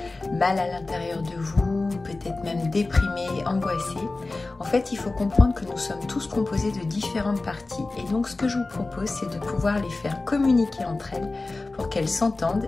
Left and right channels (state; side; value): quieter; right; 3.3 dB